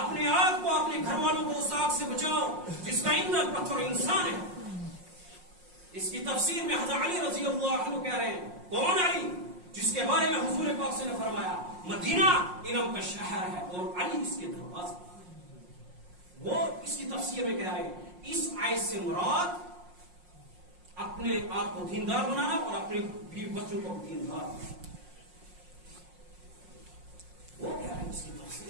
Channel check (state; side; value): late; left; 5.5 ms